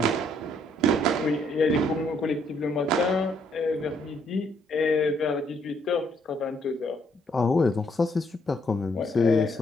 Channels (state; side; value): normal; both; correlation 0.70